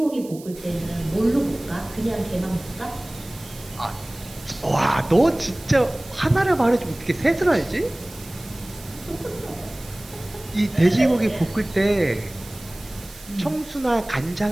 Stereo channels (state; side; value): noise; right; hiss, 20 dB below the sound